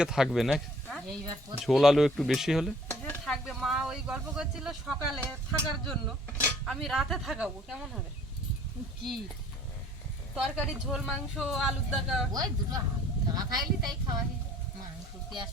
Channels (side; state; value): both; normal; correlation 0.55